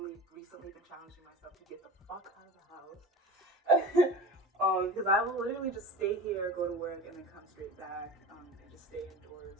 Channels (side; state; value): both; normal; correlation 0.32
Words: recently been challenging myself to get the fuck out of the house. Because I will literally just stay here, go to work, and then come straight back, and just stay indoors.